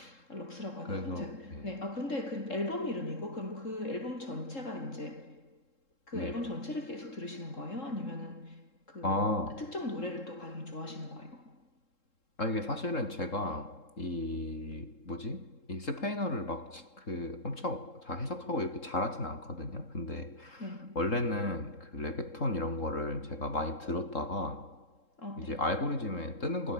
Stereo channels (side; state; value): right; late; 3.7 ms